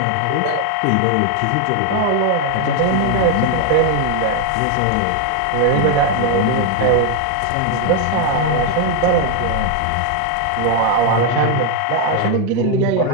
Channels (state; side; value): different; both; correlation 0.01